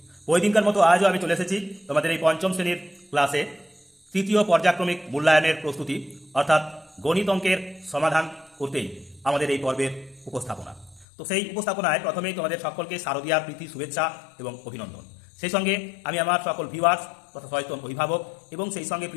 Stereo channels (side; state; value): right; drops out; at 11.1 s